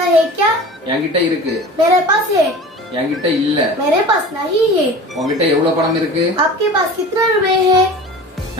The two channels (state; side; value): normal; both; correlation 0.37